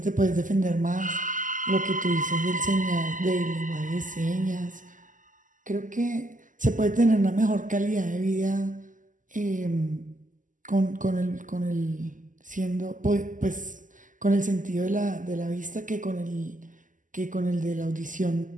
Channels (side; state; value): left; late; 0.38 ms